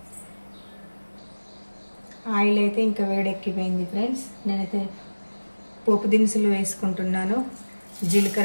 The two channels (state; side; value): inverted; both; correlation -1.00